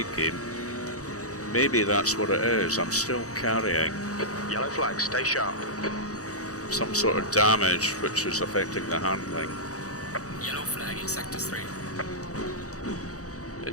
game, maybe that's what it is. I'm still carrying Yellow flag. Stay sharp. some sort of damage which is affecting the handling. Yellow flag in sector 3.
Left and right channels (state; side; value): late; right; 0.66 ms